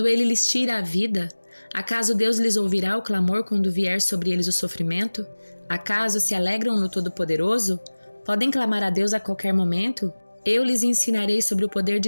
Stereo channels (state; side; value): inverted; both; correlation -1.00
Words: ele lhes tira a vida? Acaso Deus lhes ouvirá o clamor quando vier sobre eles o sofrimento? Acaso se alegram no Todo-Poderoso? Podem clamar a Deus a qualquer momento? Eu lhes ensinarei sobre o poder